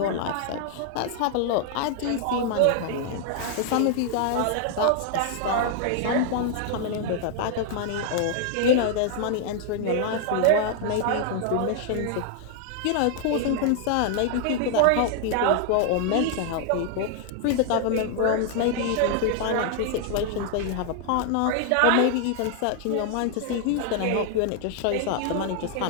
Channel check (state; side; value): different; both; correlation 0.00